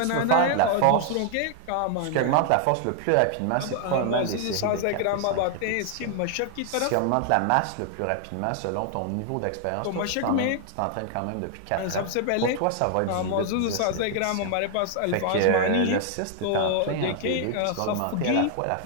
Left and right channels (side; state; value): both; different; correlation 0.00